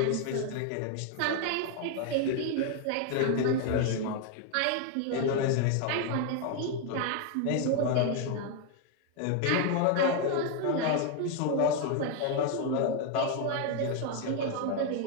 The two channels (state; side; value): different; both; correlation 0.01